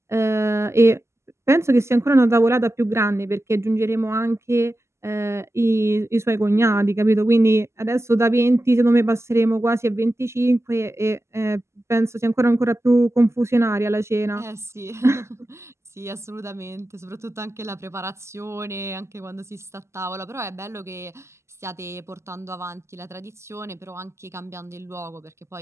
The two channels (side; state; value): left; late; 0.13 ms